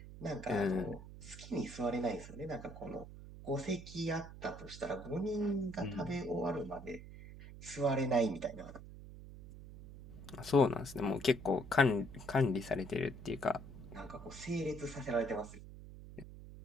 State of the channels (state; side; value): noise; right; hum, 14 dB below the sound